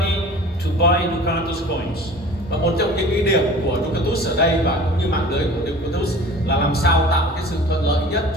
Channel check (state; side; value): normal; both; correlation 0.43